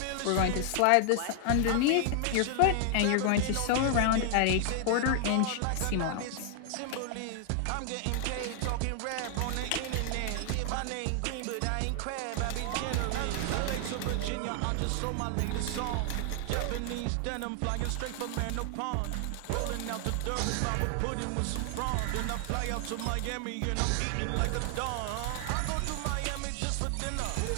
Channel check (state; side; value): different; both; correlation 0.00